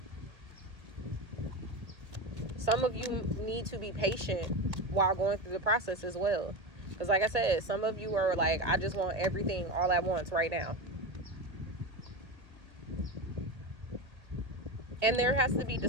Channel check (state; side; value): late; left; 1.8 ms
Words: Some of you need to be patient while going through the process as well. Because like I said, some of you are like, I just want everything all at once right now. And there has to be